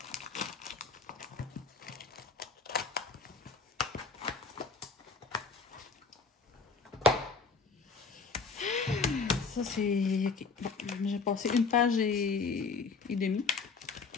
Ça, c'est... OK. Bon, j'ai passé une page et demie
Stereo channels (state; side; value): quieter; right; 4.8 dB